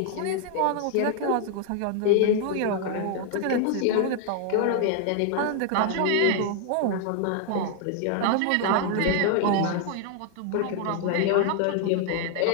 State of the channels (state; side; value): different; both; correlation 0.00